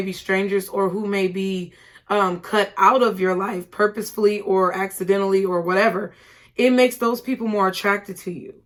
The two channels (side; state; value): both; identical; correlation 1.00